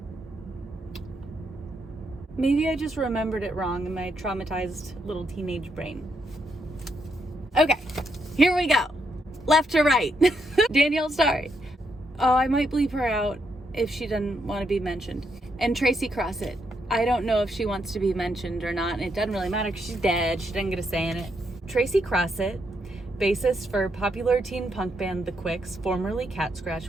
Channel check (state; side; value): normal; both; correlation 0.78